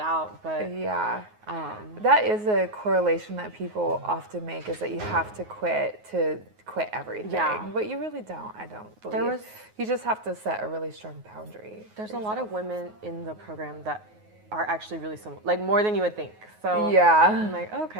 But yeah, that is a correlation that people often make, is that you have to quit everything. Yeah. But you really don't. I don't believe. You just have to set a really strong boundary. There's a lot of women in the program that are actually really similar, like more than you would think. So yeah, I'm like,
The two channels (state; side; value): late; left; 9.5 ms